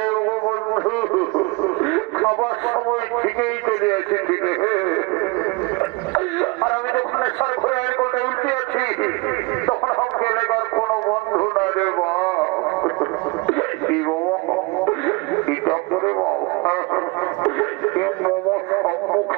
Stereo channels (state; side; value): quieter; left; 25.8 dB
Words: ও বন্ধু খাবার সময় ঠিকই চলে এসেছি আর আমি যখন সার ঘরে গাড়ি গোলটায় উল্টে আছি তখন আমাকে এলাকার কোনো বন্ধু না রে বাপ কি বাবা কি কাপ করে বাপ